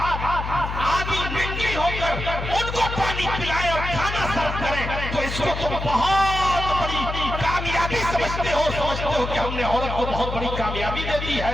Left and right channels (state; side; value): noise; left; hum, 5 dB below the sound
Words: آدھی ننگی ہو کر ان کو پانی پلائے اور کھانا سرو کرے تو اس کو تم بہت بڑی کامیابی سمجھتے ہو کہ ہم نے عورت کو بہت بڑی کامیابی دے دی